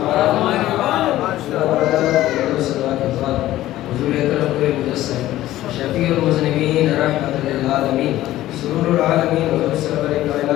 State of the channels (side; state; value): right; quieter; 14.8 dB